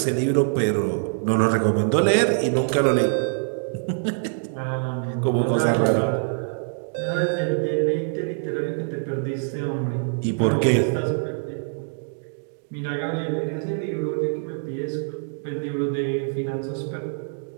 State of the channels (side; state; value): left; silent; digital silence